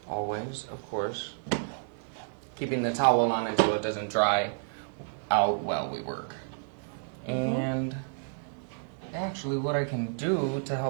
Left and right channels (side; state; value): left; silent; digital silence